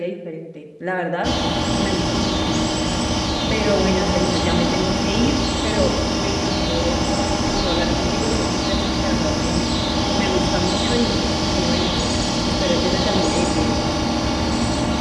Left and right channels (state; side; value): identical; both; correlation 1.00